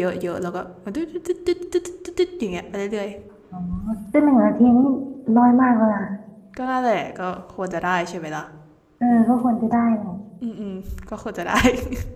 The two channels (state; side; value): identical; both; correlation 1.00